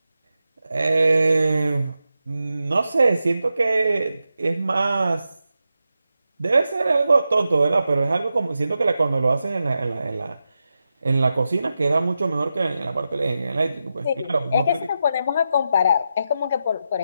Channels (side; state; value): both; inverted; correlation -0.89